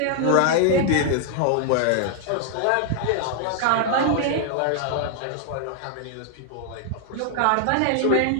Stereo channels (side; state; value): both; different; correlation 0.00